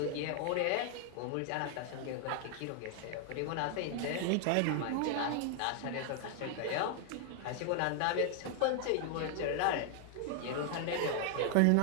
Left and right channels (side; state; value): both; different; correlation 0.00